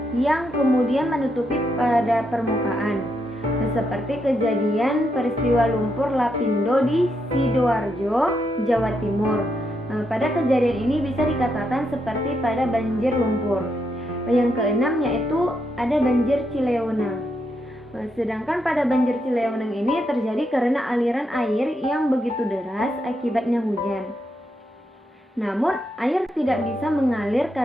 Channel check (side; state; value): both; normal; correlation 0.80